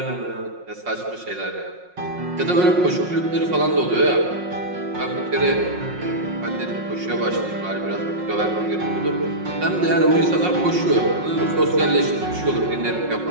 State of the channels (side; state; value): left; late; 5.5 ms